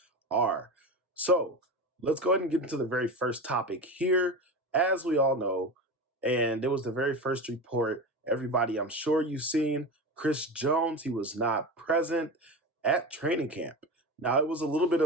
are. So let's go ahead and get into the very first topic here. As we all know, and it was the very first report, everybody, I'm sure you've seen Chris Jones. He was not present at training camp. Now, it was a little bit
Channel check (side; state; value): both; normal; correlation 0.26